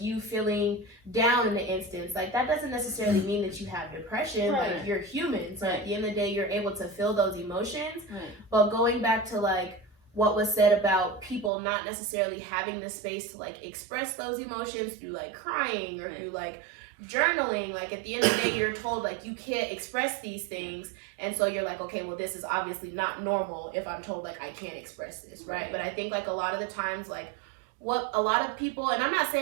you feeling down in an instance, like that doesn't necessarily mean that you have depression. Like you're human, so at the end of the day you're able to feel those emotions. But going back to like what was said about people not necessarily having the space to like express those emotions through like crying or through like journaling, like at the end of the day you're told like you can't express these things, and so you're like, okay, well this is obviously not normal if I'm told like I can't express this, right? But I think like a lot of the times like what a lot of people, and I'm not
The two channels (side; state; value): left; drops out; at 11.5 s